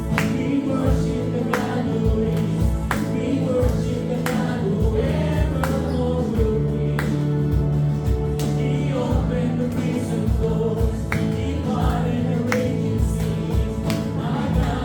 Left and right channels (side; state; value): both; identical; correlation 1.00